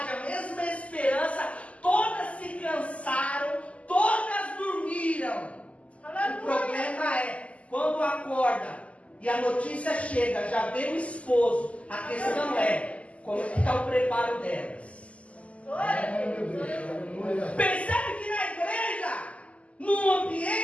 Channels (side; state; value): right; late; 0.064 ms